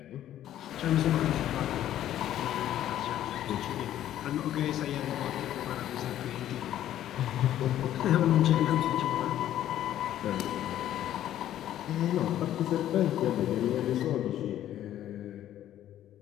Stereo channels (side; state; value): right; quieter; 12.1 dB